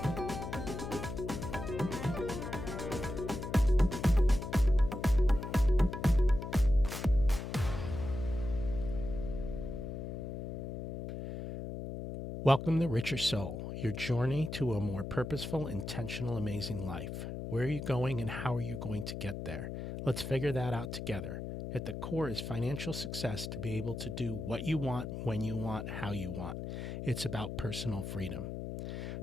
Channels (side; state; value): left; noise; hum, 6 dB below the sound